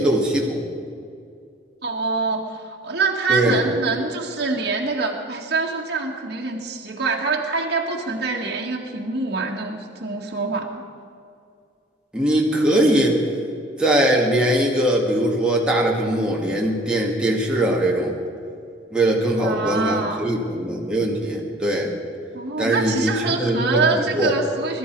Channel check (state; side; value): normal; both; correlation 0.47